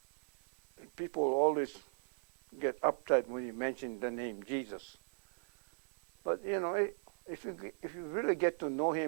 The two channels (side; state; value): left; silent; digital silence